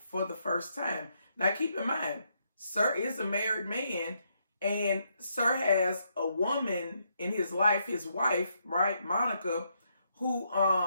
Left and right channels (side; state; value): both; inverted; correlation -0.77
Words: the first time. Now keep in mind, Sir is a married man, and Sir has a woman in his life, his wife, right, Monica, who